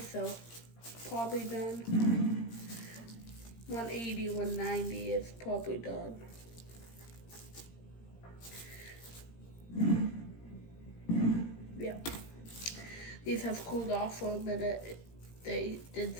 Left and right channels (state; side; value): late; right; 17 ms